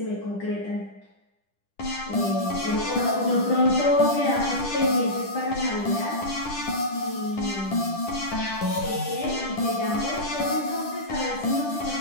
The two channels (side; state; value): right; late; 10 ms